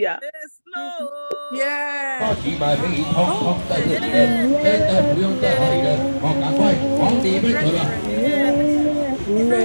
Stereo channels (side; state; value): both; inverted; correlation -1.00